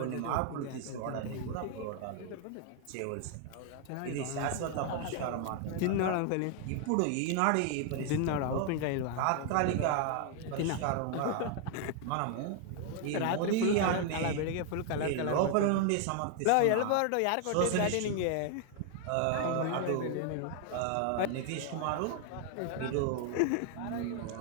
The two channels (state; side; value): different; both; correlation 0.00